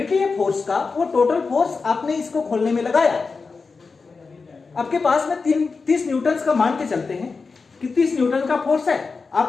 है फोर्स का, वो टोटल फोर्स आपने इसको खोलने में लगाया। आपके पास में 30 न्यूटन का मान के चलते हैं कि 30 न्यूटन का फोर्स है।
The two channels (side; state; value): right; quieter; 4.5 dB